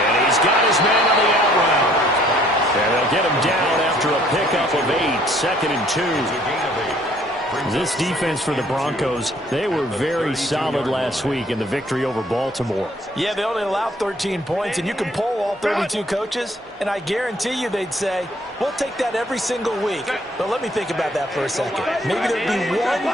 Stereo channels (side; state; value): both; normal; correlation 0.61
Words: he's got his man on the out route. And they'll get him down after a pickup of 8, 2nd and 2. This defense for the Broncos, they were very solid last week in the victory over Baltimore. Yeah, they only allowed 13 points, and you can poll all 32 coaches, and I guarantee you they'd say, we'll take that every single week. But let me think about that for a second. Maybe there'd be